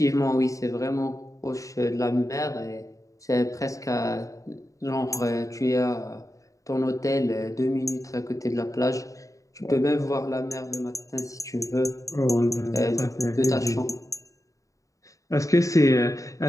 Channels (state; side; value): late; right; 0.16 ms